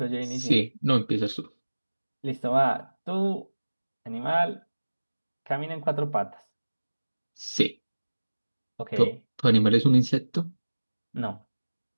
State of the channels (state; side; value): inverted; both; correlation -1.00